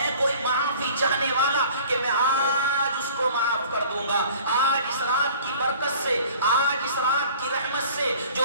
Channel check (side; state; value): both; inverted; correlation -0.48